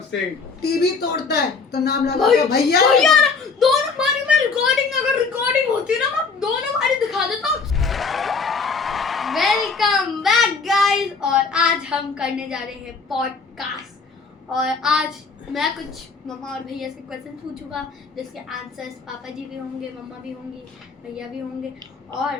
टीवी तोड़ता है तो नाम लगा दो भैया। दोनों बारी में रिकॉर्डिंग, अगर रिकॉर्डिंग होती ना मैं दोनों बारी दिखा देता हूँ। वेलकम बैक गाइस, और आज हम करने जा रहे हैं पॉडकास्ट। और आज मैं कुछ मम्मा और भैया से क्वेश्चन पूछूंगा जिसके आंसर्स पापा जी भी होंगे, मम्मा भी होंगी, भैया भी होंगे, और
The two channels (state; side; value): quieter; right; 4.7 dB